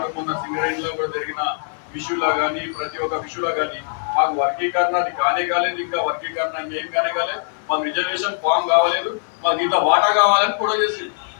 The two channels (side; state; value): right; silent; 65 dB below the other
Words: మొన్న సింగరేణిలో కూడా జరిగిన విషయంలో కానీ ప్రతి ఒక్క విషయంలో కానీ మాకు వర్గీకరణ అది కానే కాలేదు, ఇంకా వర్గీకరణ ఇంకేం కానే కాలేదు, మాకు రిజర్వేషన్ ఫామ్ కావాలేదు, మాకు ఇంత వాటా కావాలని కూడా చేసింది.